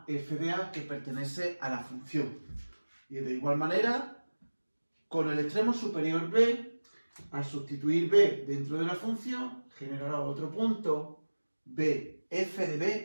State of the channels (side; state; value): both; inverted; correlation -1.00